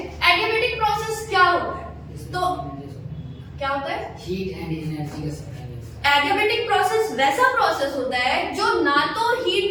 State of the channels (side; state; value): both; identical; correlation 1.00